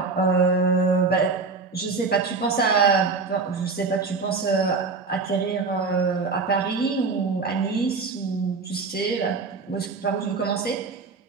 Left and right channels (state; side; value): quieter; left; 4.4 dB